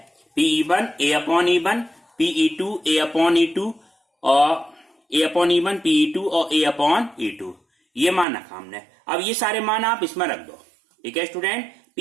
PE1 A upon E1, PE2 A upon E2 और A अपॉन E1, PE2 और A अपॉन E2, ये मान रखा हमने। अब ये सारे मान आप इसमें रख दो। ठीक है स्टूडेंट,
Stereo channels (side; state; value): left; drops out; at 8.2 s